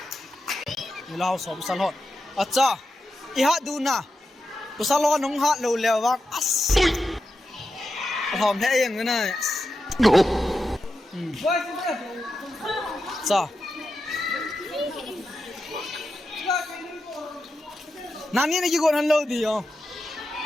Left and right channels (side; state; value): both; normal; correlation 0.89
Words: lao so busal hot acha I ha du na busal lo nong ha lo lew wak as hom the eng na cha nani ni ki gon han lo di yo